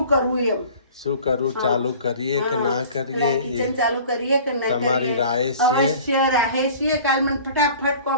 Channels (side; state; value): both; inverted; correlation -0.45